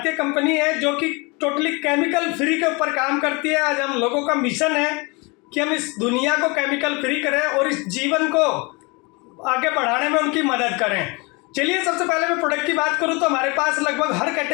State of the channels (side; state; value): right; quieter; 28.1 dB